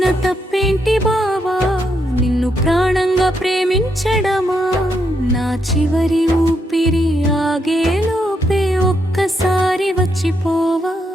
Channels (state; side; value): normal; both; correlation 0.79